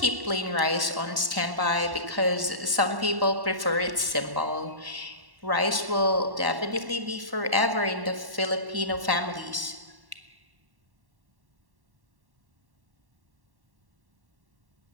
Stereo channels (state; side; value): late; left; 1.1 ms